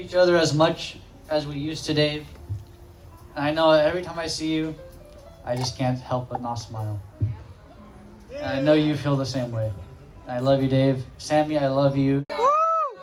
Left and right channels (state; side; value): identical; both; correlation 1.00